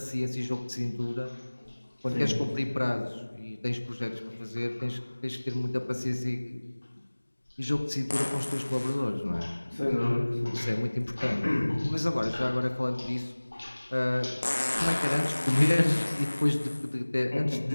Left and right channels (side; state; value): both; inverted; correlation -1.00